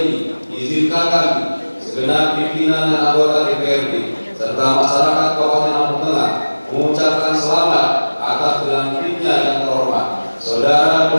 izinkan kami segenap pimpinan dan anggota DPRD serta masyarakat Kabupaten Lampung Tengah mengucapkan selamat atas dilantiknya yang terhormat Saudara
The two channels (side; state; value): both; inverted; correlation -1.00